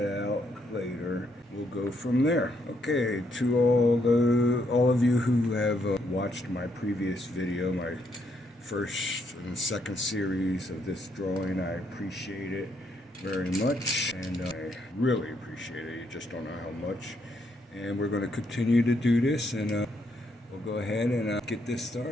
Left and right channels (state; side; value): normal; both; correlation 0.75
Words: out later. We'll go from there. Okay, to all of you who have watched my previous video, my first and second series of this drawing, I appreciate it very much, and I really appreciate it. You just don't know how much. And we're going to continue to do this, and we'll go ahead and get this